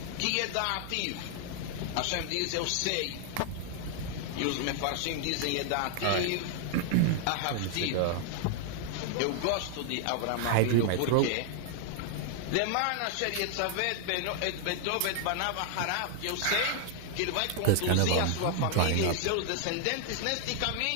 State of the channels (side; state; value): both; different; correlation 0.00